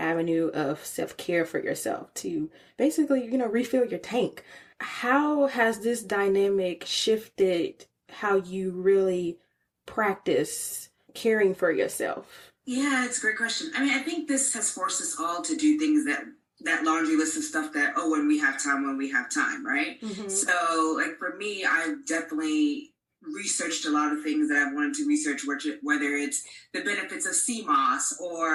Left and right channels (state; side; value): identical; both; correlation 1.00